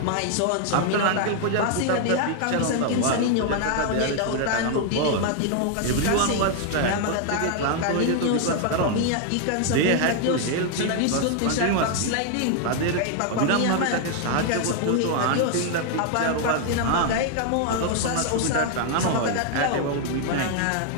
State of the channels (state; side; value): different; both; correlation 0.00